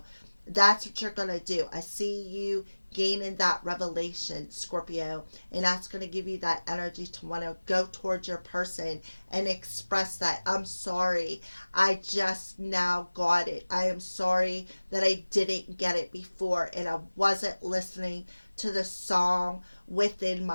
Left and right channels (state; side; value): inverted; both; correlation -1.00